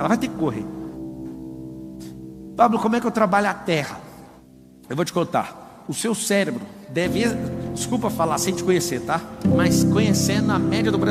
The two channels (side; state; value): both; identical; correlation 1.00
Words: vai ter que correr. Pablo, como é que eu trabalho a terra? Eu vou te contar. O seu cérebro deve, desculpa falar sem te conhecer, tá? Mas conhecendo a média do